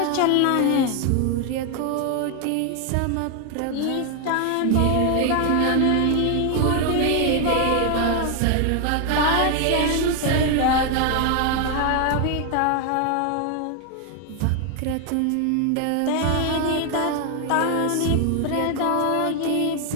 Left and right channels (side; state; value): both; different; correlation 0.00